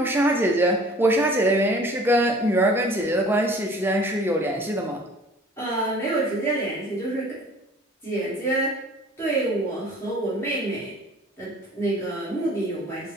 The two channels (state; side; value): normal; both; correlation 0.49